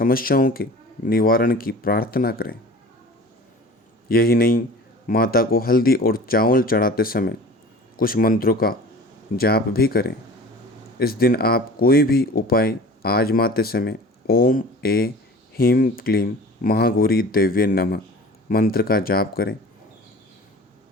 के निवारण की प्रार्थना करें। यही नहीं, माता को हल्दी और चावल चढ़ाते समय कुछ मंत्रों का जाप भी करें। इस दिन आप कोई भी उपाय आजमाते समय ओम ए ह्रीं क्लीं महागौरी देव्ये नमः मंत्र का जाप करें।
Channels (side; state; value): both; normal; correlation 0.41